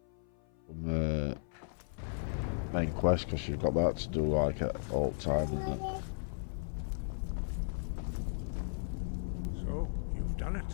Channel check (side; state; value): right; silent; 54 dB below the other